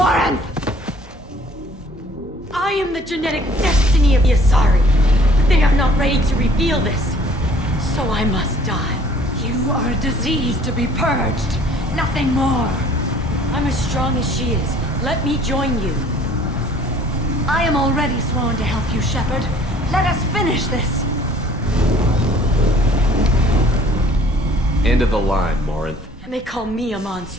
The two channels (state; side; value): normal; both; correlation 0.55